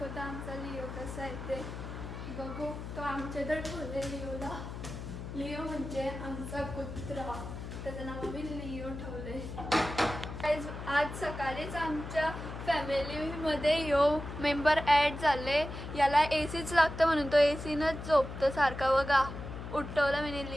आमचा लिओ कसा आहे ते बघू. तो आमच्या इथं ठेवले लिओला. लिओ म्हणजे आमचा कुत्रा, त्याचं नाव आम्ही लिओ ठेवले. आज सकाळीच आमच्या फॅमिलीमध्ये मेंबर ॲड झाले. याला एसीच लागतं म्हणून तो एसीनच झोपतो सारखा. बघा उठवलं मी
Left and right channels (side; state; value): left; noise; hum, 9 dB below the sound